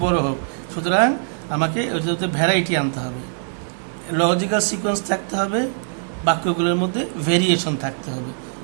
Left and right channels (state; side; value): silent; left; digital silence